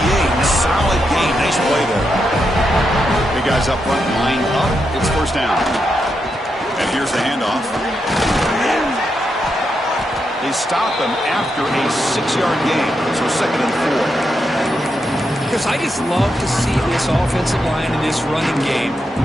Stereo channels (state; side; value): normal; both; correlation 0.84